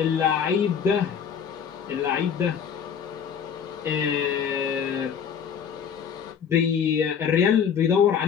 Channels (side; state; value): right; quieter; 7.5 dB